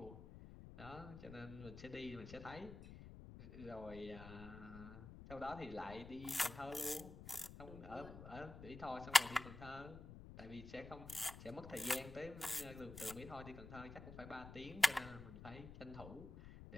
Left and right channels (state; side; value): noise; left; rumble, 12 dB below the sound